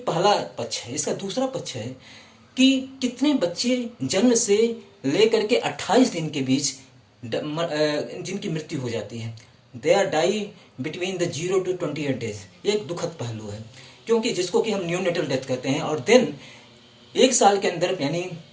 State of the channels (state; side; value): identical; both; correlation 1.00